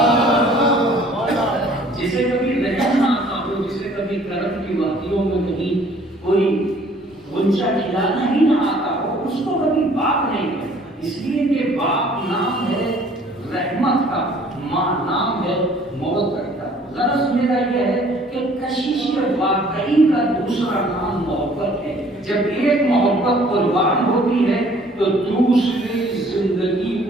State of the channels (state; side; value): normal; both; correlation 0.56